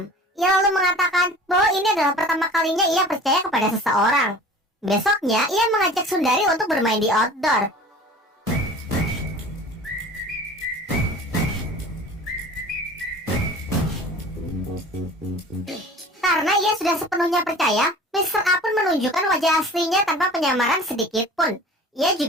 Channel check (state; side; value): normal; both; correlation 0.43